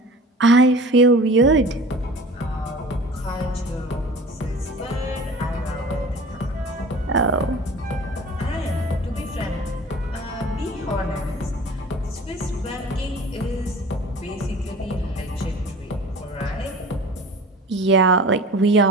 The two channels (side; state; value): both; normal; correlation 0.40